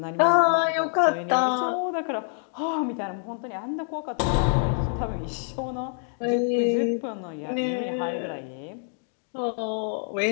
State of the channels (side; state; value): right; silent; 56 dB below the other